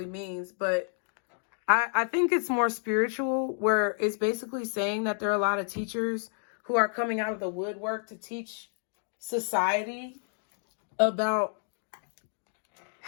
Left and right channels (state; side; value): silent; right; digital silence